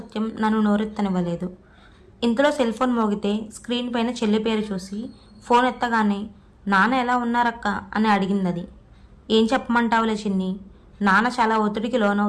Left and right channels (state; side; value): identical; both; correlation 1.00